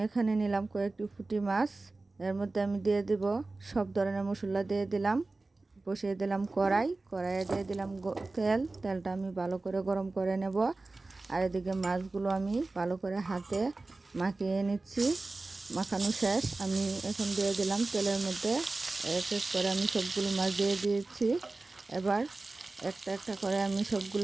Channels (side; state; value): left; quieter; 3.3 dB